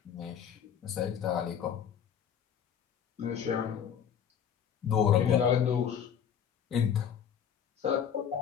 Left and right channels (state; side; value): quieter; right; 8.3 dB